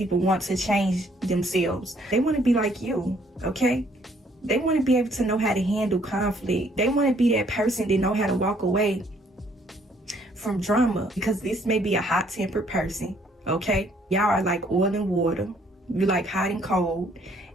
want to change themselves. They want to be like you, okay? They want to be able to know how to handle conflict. They want to be that person that know how to walk away from drama, because this may be a hot-tempered person, okay? Y'all are like oil and water. You like hot and cold.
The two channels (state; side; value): normal; both; correlation 0.64